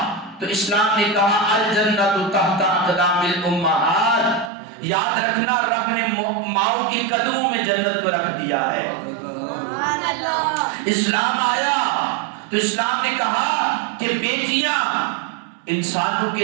تو اسلام نے کہا الجنت تحت اقدام الامہات، یاد رکھنا رب نے ماؤں کے قدموں میں جنت کو رکھ دیا ہے۔ اسلام آیا تو اسلام نے کہا کہ بیٹیاں انسانوں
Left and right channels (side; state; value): left; drops out; at 4.5 s